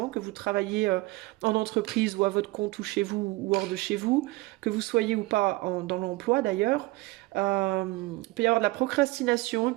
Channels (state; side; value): quieter; left; 20.9 dB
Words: que vous travaillez en entreprise ou à votre compte ou chez vous ou hors de chez vous, que vous soyez ou pas dans l'emploi d'ailleurs, il peut y avoir de la procrastination, il